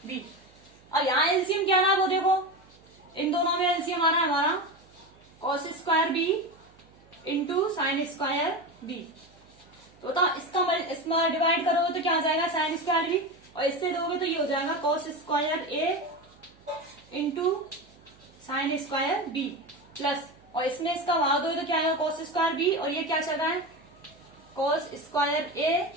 b। अब यहाँ एलसीएम क्या रहा है वो देखो, इन दोनों में एलसीएम आ रहा है हमारा cos square b into sine square b। तो इसमें डिवाइड करोगे तो क्या आ जाएगा साइन स्क्वायर b और इससे दोगे तो ये हो जाएगा cos square a into sine square b plus, और इसमें इसका भाग दोगे तो क्या आएगा cos स्क्वायर b और ये क्या चल रहा है cos square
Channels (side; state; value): right; noise; hum, 28 dB below the sound